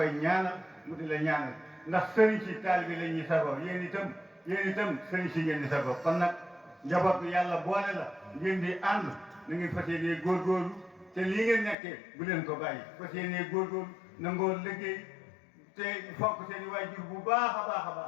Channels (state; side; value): drops out; right; at 11.8 s